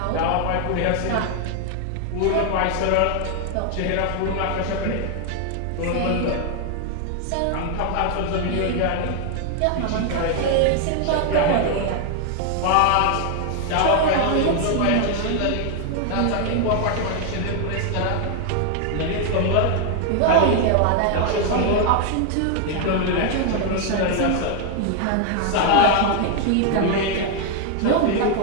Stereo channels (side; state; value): both; different; correlation 0.00